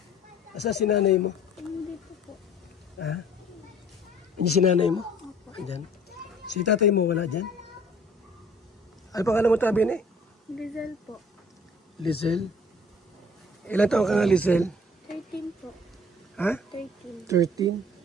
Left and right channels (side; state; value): both; normal; correlation 0.52